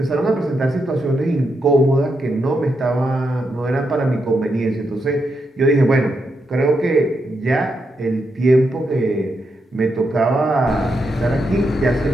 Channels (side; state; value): both; normal; correlation 0.83